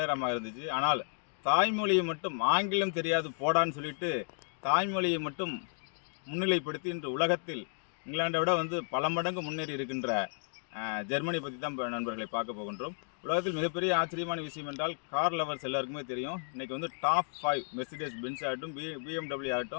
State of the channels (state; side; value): silent; right; 56 dB below the other